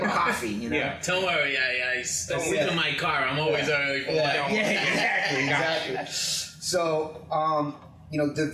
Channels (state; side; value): identical; both; correlation 1.00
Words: coffee. Yeah. Don't worry. I sleep in my car. I'm always early for exactly. So, the